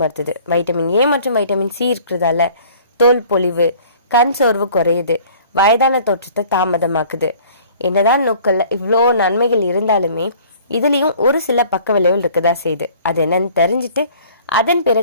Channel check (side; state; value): both; inverted; correlation -0.51